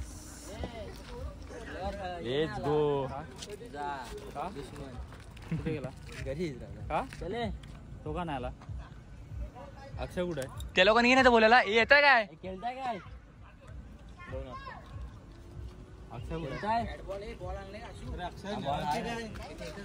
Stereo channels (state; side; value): identical; both; correlation 1.00